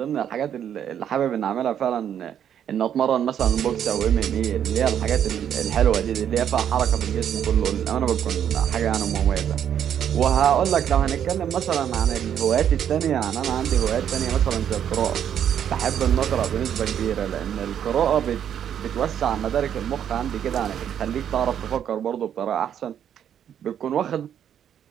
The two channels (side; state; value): left; quieter; 9.3 dB